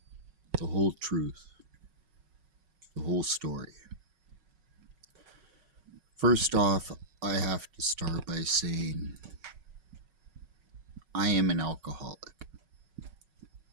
the whole truth, the whole story. First off, I have to start by saying I am an alcoholic.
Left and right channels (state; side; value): late; left; 5.4 ms